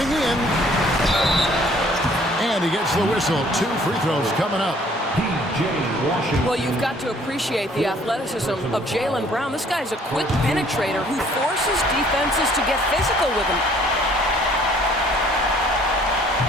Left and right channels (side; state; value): both; normal; correlation 0.59